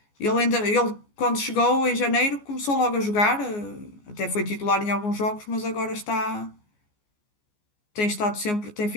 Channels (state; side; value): late; right; 14 ms